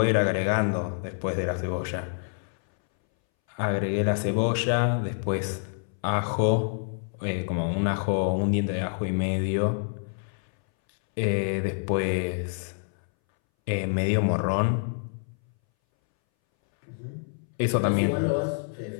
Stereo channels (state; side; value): silent; right; 60 dB below the other